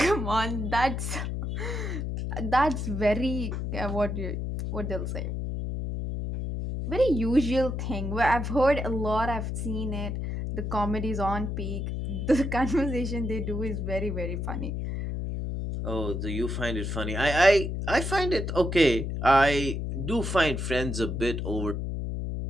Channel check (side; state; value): left; noise; hum, 3 dB below the sound